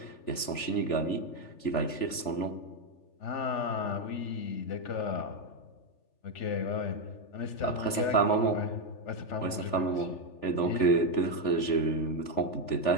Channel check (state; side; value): late; right; 3.4 ms